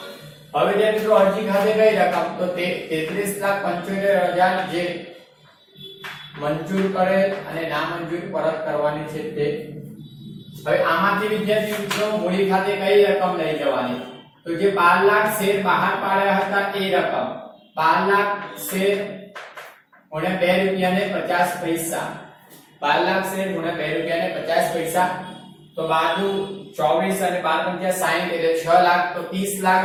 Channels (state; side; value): identical; both; correlation 1.00